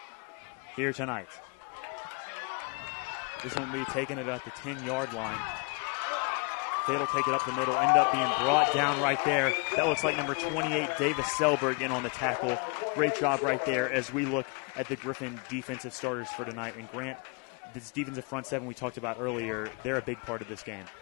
here tonight. This one will be taking it at the 10-yard line. Fayette will take it up the middle. Ended up being brought down right there. That looks like number 28, Davis Selberg, in on the tackle. Great job right there as we look at the Gryphon defensive starters for tonight. And Grant, this defensive front seven we talked about earlier, they're a big part of this game.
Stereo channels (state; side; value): quieter; right; 34.1 dB